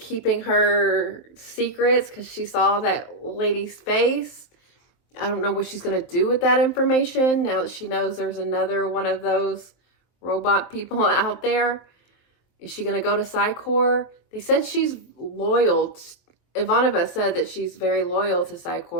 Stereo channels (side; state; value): right; late; 23 ms